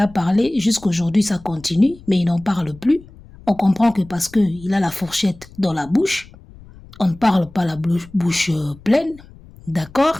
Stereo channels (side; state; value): left; noise; rumble, 22 dB below the sound